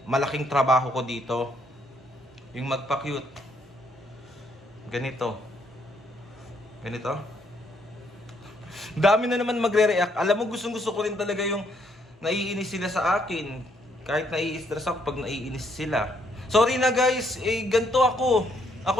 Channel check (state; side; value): normal; both; correlation 0.71